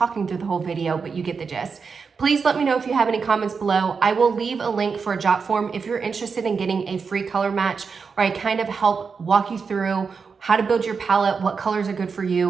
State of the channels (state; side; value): quieter; left; 5.4 dB